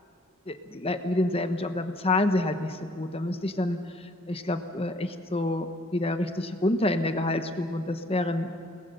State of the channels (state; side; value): normal; both; correlation 0.60